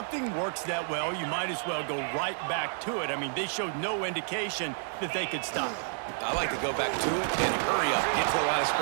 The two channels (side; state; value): left; silent; digital silence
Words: works that well, you might as well go right back to it. I mean, they showed no indication that they could stop it. I like to go back to it and hurry up, get to the line of